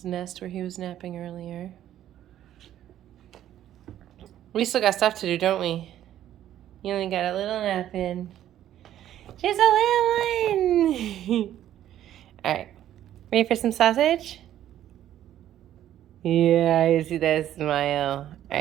nest where he was napping earlier. We still got stuff to do, don't we? You only got a little nap in. Just a little one. All right. Ready for some sausage? Yeah, I see that smile. All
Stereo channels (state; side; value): quieter; left; 11.9 dB